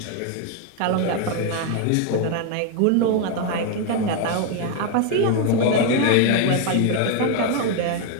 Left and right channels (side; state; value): both; different; correlation 0.01